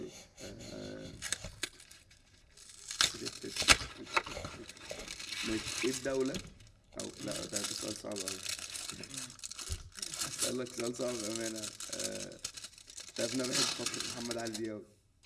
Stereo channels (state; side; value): identical; both; correlation 1.00